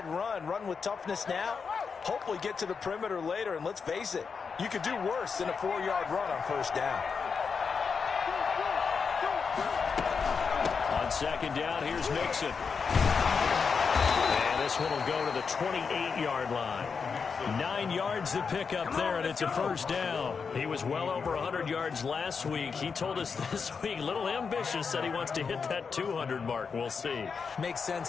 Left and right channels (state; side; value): quieter; right; 5.6 dB